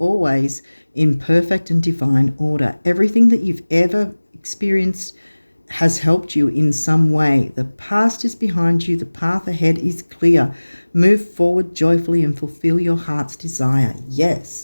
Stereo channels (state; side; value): inverted; both; correlation -1.00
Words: in perfect and divine order. Everything that you've ever experienced has helped you in some way. The past is behind you. The path ahead is clear. Move forward joyfully and fulfill your heart's desire.